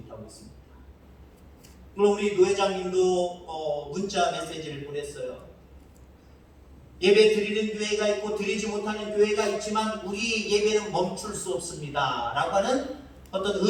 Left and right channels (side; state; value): both; identical; correlation 1.00